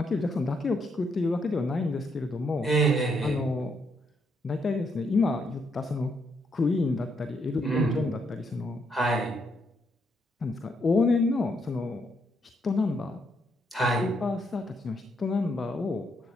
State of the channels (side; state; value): both; normal; correlation 0.76